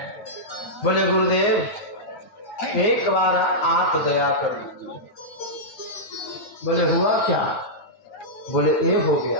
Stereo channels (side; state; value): right; late; 9.1 ms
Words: बोले गुरुदेव एक बार आप दया कर दीजिए। बोले हुआ क्या? बोले ये हो